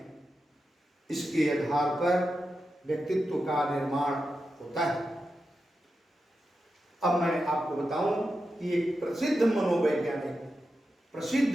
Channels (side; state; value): both; normal; correlation 0.90